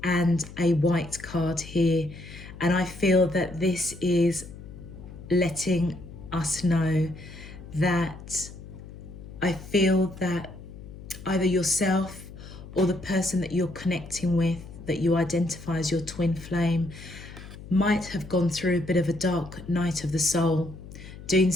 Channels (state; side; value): noise; left; hum, 15 dB below the sound